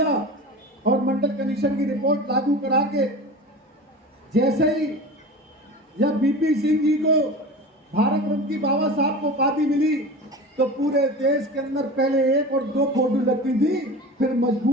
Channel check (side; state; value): both; normal; correlation 0.33